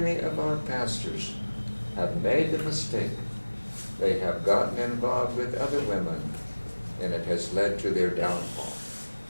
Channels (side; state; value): both; inverted; correlation -1.00